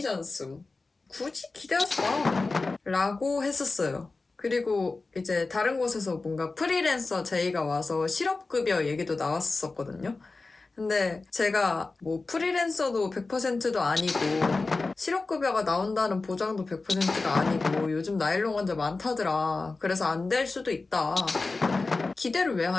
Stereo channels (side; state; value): right; quieter; 3.7 dB